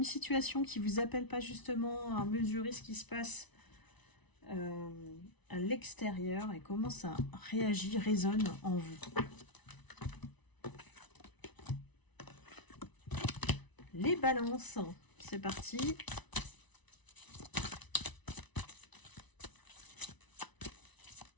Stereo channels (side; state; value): right; late; 1.0 ms